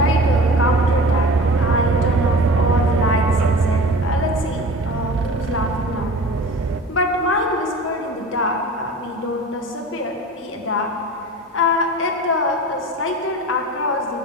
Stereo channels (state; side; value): normal; both; correlation 0.38